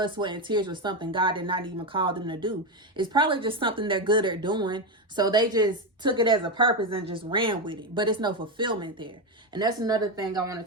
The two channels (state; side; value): normal; both; correlation 0.11